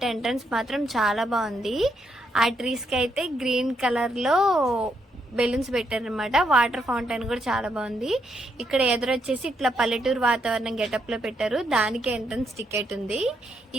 ఎంట్రన్స్ మాత్రం చాలా బాగుంది. ఆ ట్రీస్కి అయితే గ్రీన్ కలర్లో బెలూన్స్ పెట్టారనమాట. వాటర్ ఫౌంటైన్ కూడా చాలా బాగుంది. ఇక్కడ ఎదురొచ్చేసి ఇట్లా పల్లెటూరు వాతావరణం గెటప్లో పెట్టారు. దానికి ఎంట్రన్స్ టికెట్ ఉంది.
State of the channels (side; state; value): both; normal; correlation 0.77